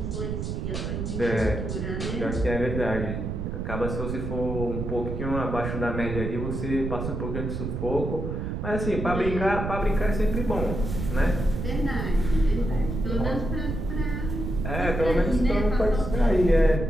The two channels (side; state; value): right; noise; rumble, 3 dB below the sound